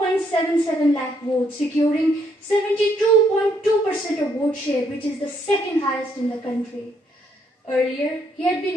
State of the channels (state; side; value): normal; both; correlation 0.70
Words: lakh votes, securing 72.2% of vote share, which is the second highest in the country. Earlier, he had